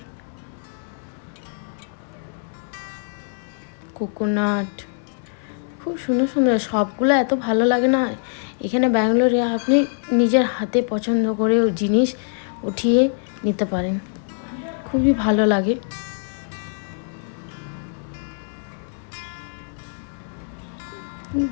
কোকোনাট। খুব সুন্দর সুন্দর, সবগুলো এত ভালো লাগে না। এখানে ব্যাঙ্গালোরে আপনি নিজের হাতে পছন্দ করে জিনিস উঠিয়ে নিতে পারেন, খুবই ভালো লাগে।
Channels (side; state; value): right; silent; digital silence